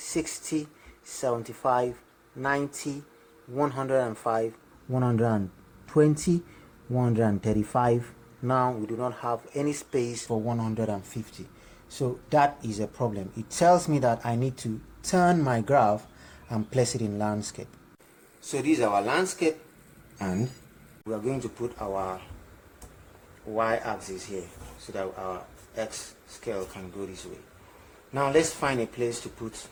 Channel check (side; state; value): both; identical; correlation 1.00